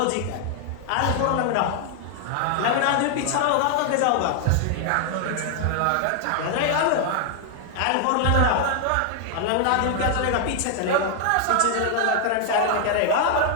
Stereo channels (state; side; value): different; both; correlation 0.00